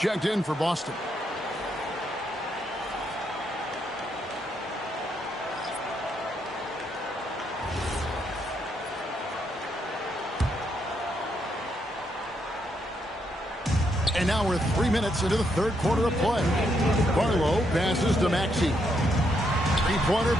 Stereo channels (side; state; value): both; normal; correlation 0.77